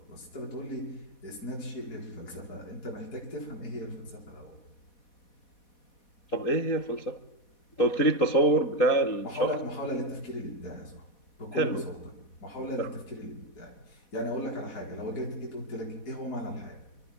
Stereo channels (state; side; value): late; right; 4.1 ms